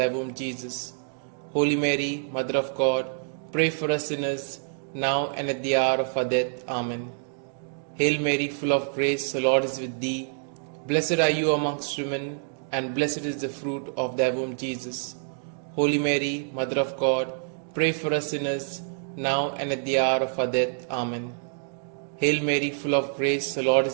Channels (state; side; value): silent; left; digital silence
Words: womb, Jesus. Holy Mary, Mother of God, pray for us sinners, now and at the hour of our death. Amen. Hail Mary, full of grace, the Lord is with thee. Blessed are you amongst women, and blessed is the fruit of thy womb, Jesus. Holy Mary, Mother of God, pray for us sinners, now and at the hour of our death. Amen. Hail Mary, full of grace, the Lord